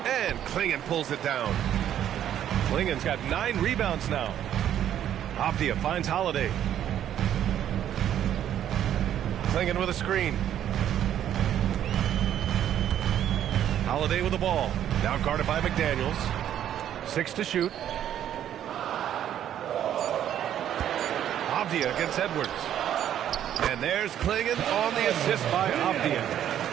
And Klingen pulls it down. Klingen's got 9 rebounds now. Avdia finds Holiday. Klingen with a screen. Holiday with the ball. Now guarded by McDaniels. 6 to shoot. Avdia against Edwards. And there's Klingen on the assist by Avdia.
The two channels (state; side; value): quieter; left; 10.6 dB